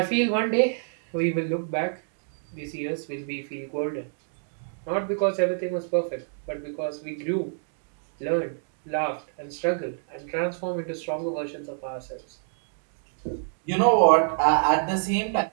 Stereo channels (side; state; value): left; silent; digital silence